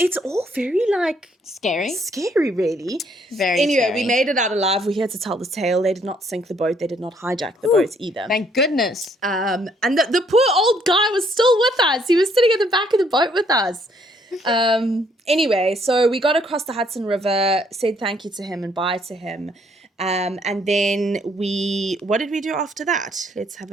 all very, like... Scary, really. Very Anyway, scary. we made it out alive. We're here to tell the tale. They did not sink the boat. They did not hijack the boat either. Thank goodness. And the poor old guy was still with us. He was sitting at the back of the boat with us. Anyway, so we got across the Hudson River, said thank you to him and bye to him. And then what did we do after that? Let's have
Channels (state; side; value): normal; both; correlation 0.67